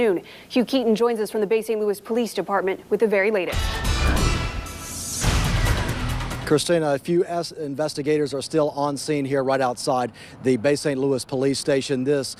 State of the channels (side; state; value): both; identical; correlation 1.00